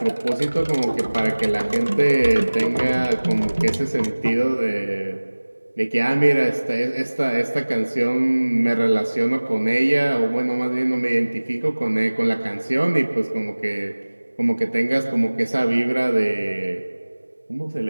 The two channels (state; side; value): inverted; both; correlation -1.00